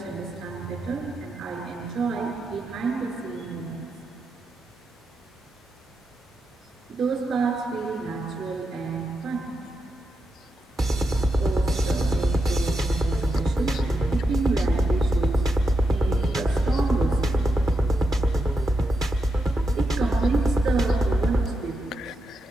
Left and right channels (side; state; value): both; normal; correlation 0.85